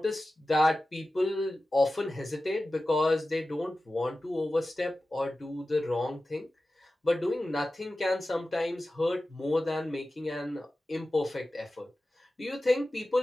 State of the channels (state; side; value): normal; both; correlation 0.95